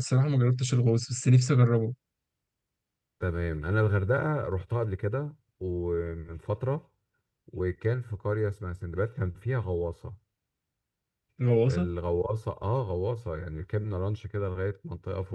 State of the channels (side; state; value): both; identical; correlation 1.00